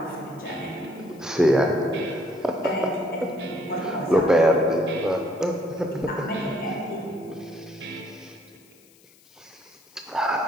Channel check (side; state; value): left; noise; hiss, 28 dB below the sound